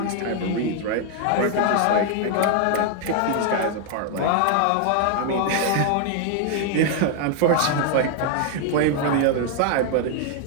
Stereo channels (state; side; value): different; both; correlation 0.00